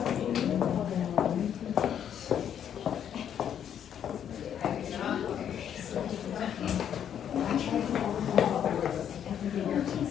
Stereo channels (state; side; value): quieter; right; 9.2 dB